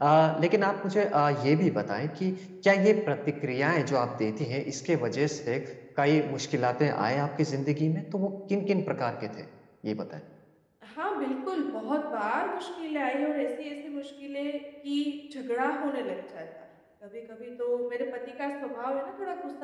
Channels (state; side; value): identical; both; correlation 1.00